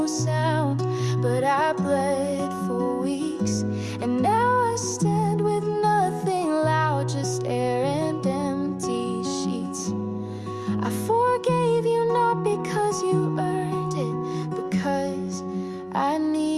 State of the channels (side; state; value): both; identical; correlation 1.00